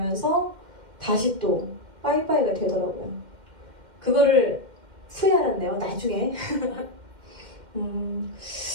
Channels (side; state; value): left; late; 2.1 ms